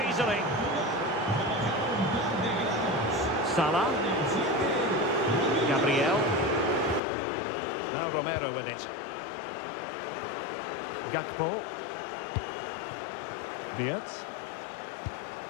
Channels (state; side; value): drops out; right; at 7.0 s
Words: easily. Salah. Gabriel. Now Romero with it. Gakpo. Wirtz.